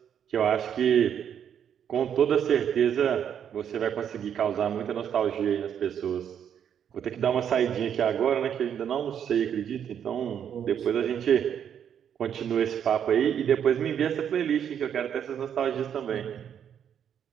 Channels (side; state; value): left; quieter; 8.7 dB